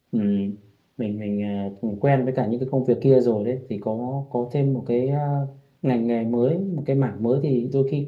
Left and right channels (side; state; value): both; identical; correlation 1.00